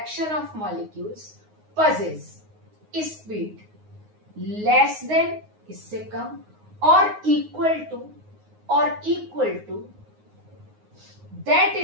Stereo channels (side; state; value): left; late; 9.5 ms